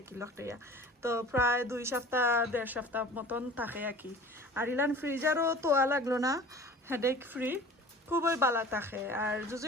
কি লকটাইয়া। তো প্রায় 2 সপ্তাহ 1.5 সপ্তাহ মতন থাকে আর কি। আর ইলান ফ্রিজারও তোয়া লাগলো না, হেডেক ফ্রি, খুবই বালা থাকে। আর যদি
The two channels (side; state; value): both; normal; correlation 0.42